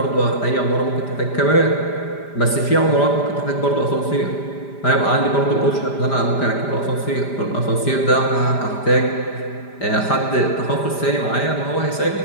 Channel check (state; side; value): late; right; 5.0 ms